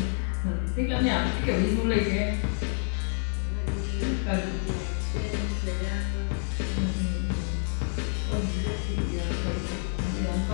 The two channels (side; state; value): right; silent; 59 dB below the other